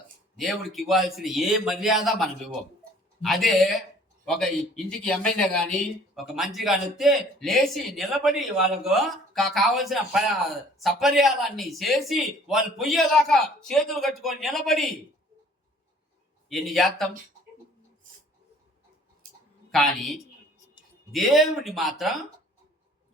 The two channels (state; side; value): normal; both; correlation 0.54